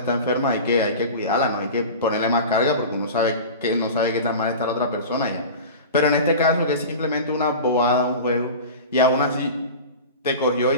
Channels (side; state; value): both; inverted; correlation -0.33